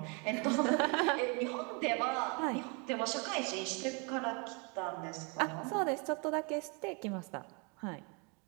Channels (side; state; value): left; quieter; 33.2 dB